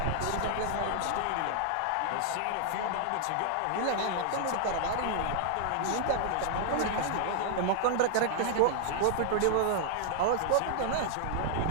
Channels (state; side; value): different; both; correlation 0.00